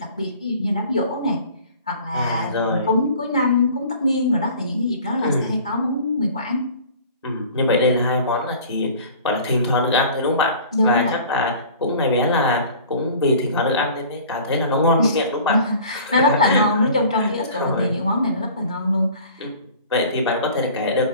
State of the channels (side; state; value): both; inverted; correlation -0.45